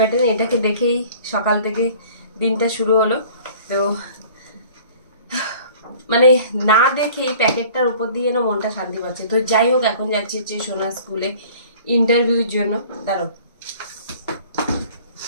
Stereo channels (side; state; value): both; inverted; correlation -0.49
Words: এটাকে দেখেই সকাল থেকে দিনটা শুরু হলো। তো মানে না দেখেই প্যাকেটটার উপর দিয়ে না মনটা শান্তি পাচ্ছে। তো যাই হোক, এখন যাচ্ছি হচ্ছে সোনা স্কুলে ইন্টারভিউর জন্য। দাঁড়াও,